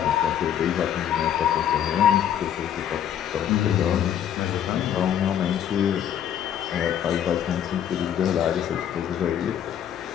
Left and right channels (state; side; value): quieter; right; 9.8 dB